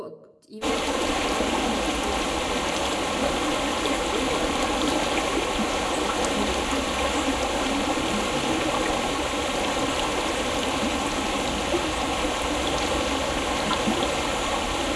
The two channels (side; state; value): both; identical; correlation 1.00